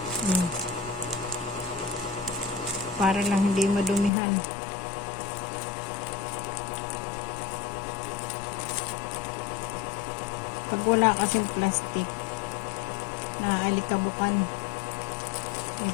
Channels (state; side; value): drops out; right; at 4.1 s